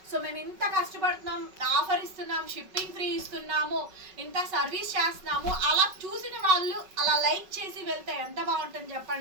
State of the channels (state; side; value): late; left; 5.4 ms